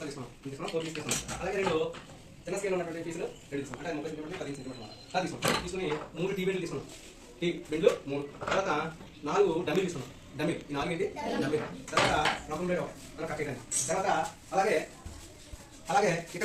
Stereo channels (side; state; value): both; identical; correlation 1.00